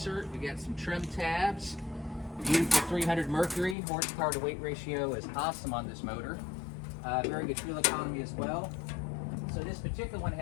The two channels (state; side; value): drops out; right; at 3.8 s